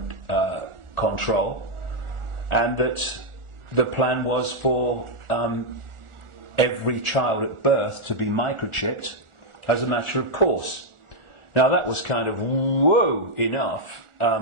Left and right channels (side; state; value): left; late; 1.4 ms